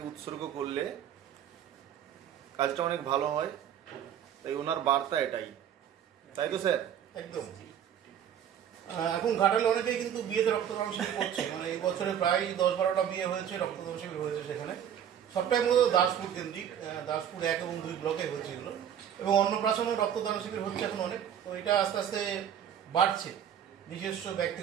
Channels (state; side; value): quieter; left; 9.4 dB